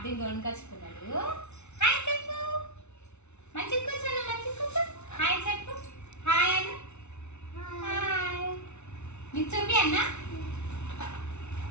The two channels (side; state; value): right; late; 0.82 ms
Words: కొనుకొచ్చుకున్నాడు. హాయ్ చెప్పు, మంచి కూర్చోను, మంచి కూర్చో. హాయ్ చెప్పు, హాయ్ అను. హాయ్ నీకు చూపి అన్నా.